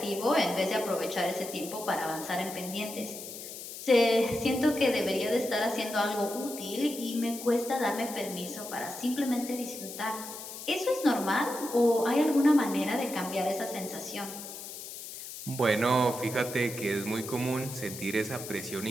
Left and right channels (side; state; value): left; noise; hiss, 10 dB below the sound